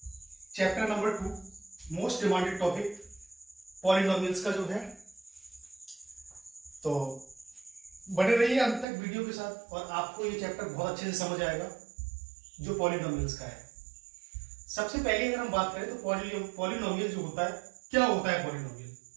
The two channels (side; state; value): left; drops out; at 8.8 s